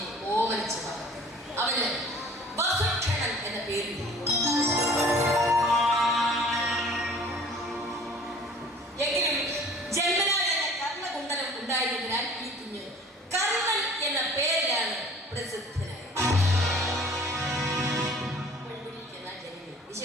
ഓമനിച്ചു വളർത്തി. അവന് വസുക്ഷണൻ എന്ന പേര്. എങ്കിലും ജന്മനാ എന്ന കർണകുണ്ടലം ഉണ്ടായിരുന്നതിനാൽ ഈ കുഞ്ഞ് കർണൻ എന്ന പേരിലാണ് പ്രസിദ്ധനായത്.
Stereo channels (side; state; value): both; normal; correlation 0.49